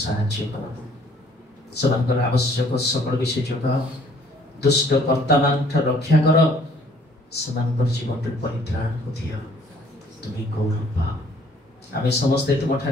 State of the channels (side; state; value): both; normal; correlation 0.59